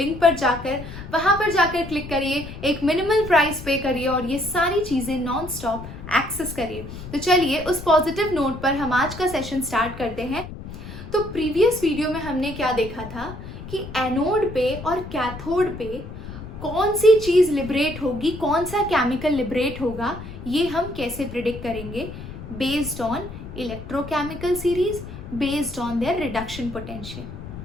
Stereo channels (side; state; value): left; noise; rumble, 11 dB below the sound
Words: पर जाकर वहाँ पर जाकर क्लिक करिए, एक मिनिमल प्राइस पे करिए और ये सारी चीज़ें नॉन स्टॉप एक्सेस करिए। तो चलिए उस पॉजिटिव नोट पर हम आज का सेशन स्टार्ट करते हैं। तो प्रीवियस वीडियो में हमने क्या देखा था कि एनोड पे और कैथोड पे कौन सी चीज़ लिबरेट होगी, कौन सा केमिकल लिबरेट होगा, ये हम कैसे प्रिडिक्ट करेंगे based on electrochemical series, based on their reduction potential.